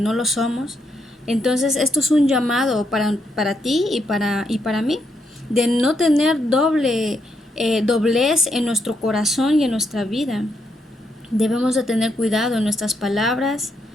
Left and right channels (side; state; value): both; normal; correlation 0.78